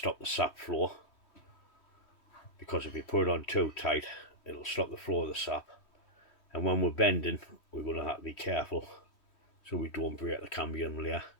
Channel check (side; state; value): right; late; 3.1 ms